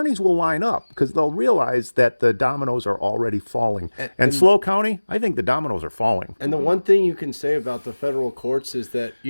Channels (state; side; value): inverted; both; correlation -1.00